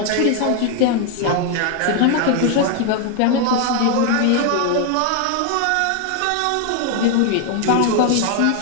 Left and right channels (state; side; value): different; both; correlation 0.01